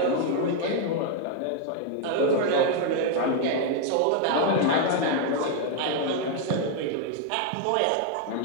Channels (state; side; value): different; both; correlation 0.00